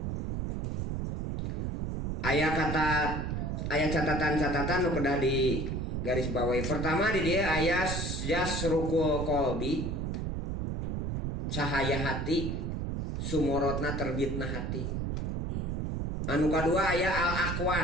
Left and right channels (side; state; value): right; noise; rumble, 2 dB below the sound